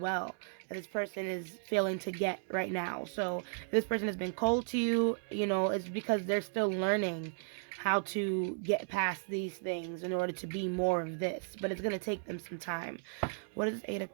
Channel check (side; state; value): left; silent; digital silence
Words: that this person is failing to get right now. So if this person has been cold to you, you know, it's because they're still learning how to get past these things in order to be more of this, but it's going to take them some time. What is 8 of